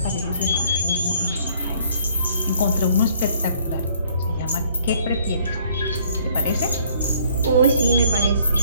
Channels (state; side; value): inverted; both; correlation -0.61